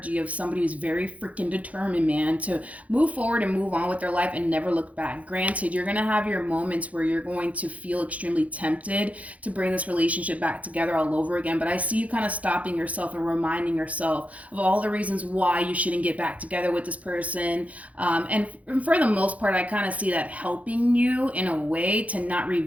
of somebody who's very freaking determined, man, to move forward and move on with their life and never look back. Granted, you're going to have your moments where you're going to feel extremely tempted to bring this relationship back together all over again, but I see you kind of stopping yourself and reminding yourself of all the reasons why you shouldn't get back together with this person, and for the most part, I kind of see that helping you in a way to not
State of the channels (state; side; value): late; left; 0.068 ms